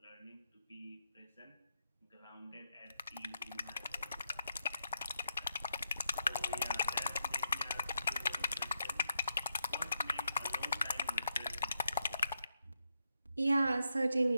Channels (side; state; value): both; inverted; correlation -0.80